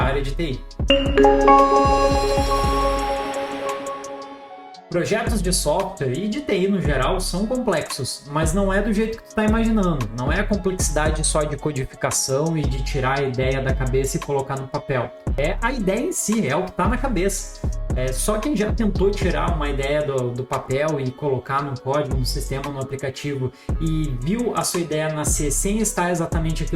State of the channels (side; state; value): both; identical; correlation 1.00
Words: de TI. Projetos de software e de TI no geral são complexos, mas não é do jeito que tu está imaginando. Não é a complexidade só de codificação e de tirar a ideia da cabeça e colocar no papel. É a ideia em si, é o que está na cabeça. Só quem já tentou tirar uma ideia do papel e colocar no código, no sistema, no aplicativo e viu a sua ideia nascer sem estar exatamente